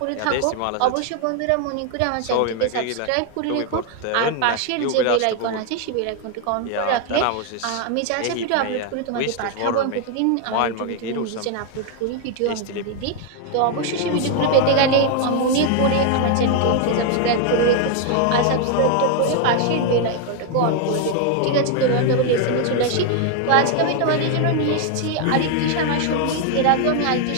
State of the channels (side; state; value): both; different; correlation 0.00